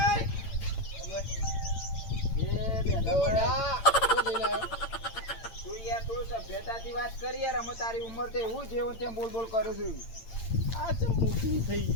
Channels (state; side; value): late; right; 8.9 ms